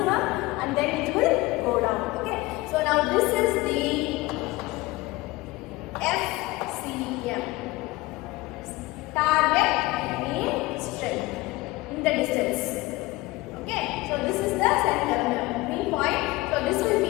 and then it will go down. Okay, so now this is the FCM, target mean strength in the distance. Okay, so this is the center mean point. So this will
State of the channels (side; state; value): right; quieter; 20.4 dB